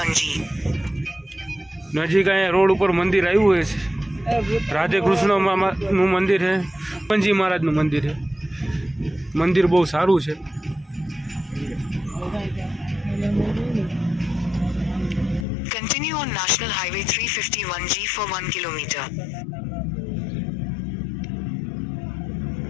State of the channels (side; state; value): right; drops out; at 15.5 s